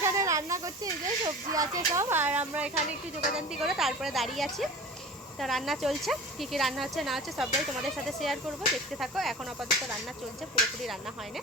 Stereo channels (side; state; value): both; normal; correlation 0.37